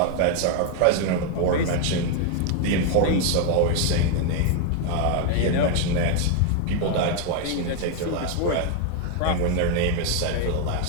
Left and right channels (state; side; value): different; both; correlation 0.01